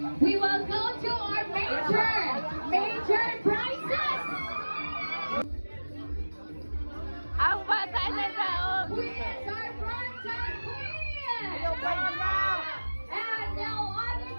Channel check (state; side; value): inverted; both; correlation -1.00